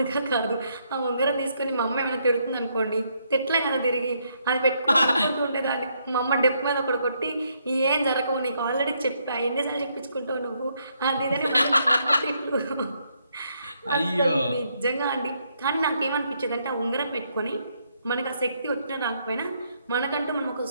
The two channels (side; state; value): both; inverted; correlation -0.74